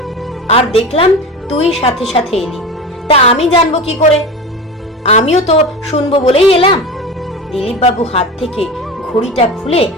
আর দেখলাম তুই সাথে সাথে এলি। তা আমি জানবো কি করে? আমিও তো শুনবো বলেই এলাম। দিলীপ বাবু হাত থেকে ঘড়িটা খুলে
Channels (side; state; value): both; normal; correlation 0.29